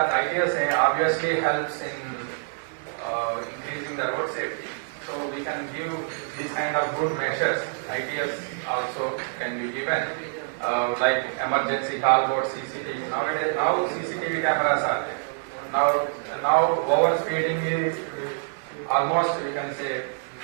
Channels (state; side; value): silent; left; 59 dB below the other